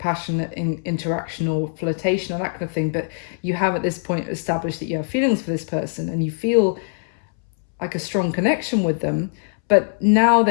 interaction or flirtation or that kind of thing, but you have at this point established that you have feelings for this person and you feel like a strong connection with them. But now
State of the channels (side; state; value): right; silent; 64 dB below the other